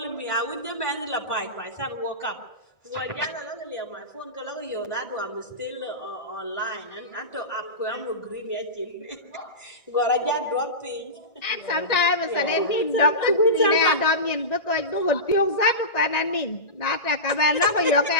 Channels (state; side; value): late; right; 1.6 ms